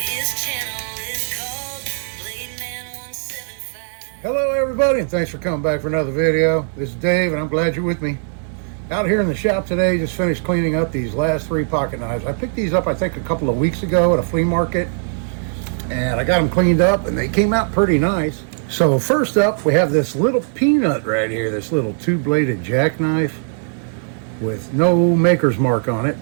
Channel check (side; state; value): left; silent; digital silence